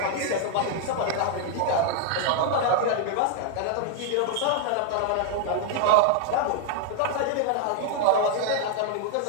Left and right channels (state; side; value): different; both; correlation 0.00